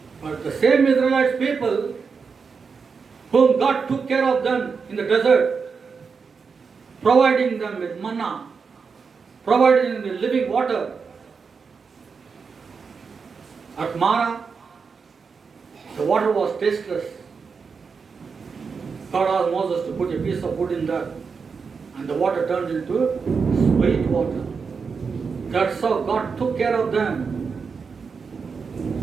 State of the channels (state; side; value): quieter; left; 5.4 dB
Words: But the same Israelites people whom God took care of them in the desert, providing them with manna, providing them with living water. At Mara, the water was tasteless. God asked Moses to put a piece of wood in that, and the water turned into sweet water. That's how God took care of them.